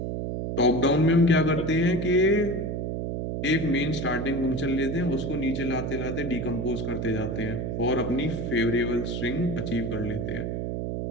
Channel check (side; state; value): right; noise; hum, 3 dB below the sound